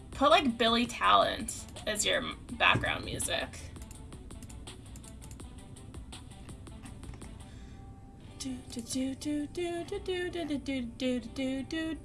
Put like Billy Talent as your background music.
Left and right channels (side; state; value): both; identical; correlation 1.00